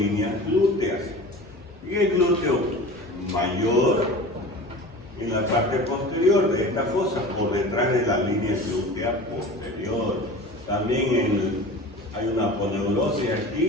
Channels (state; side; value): normal; both; correlation 0.37